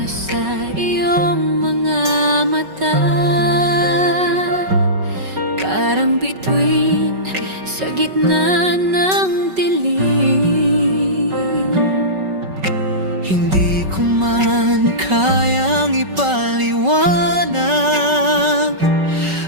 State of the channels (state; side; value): late; left; 5.3 ms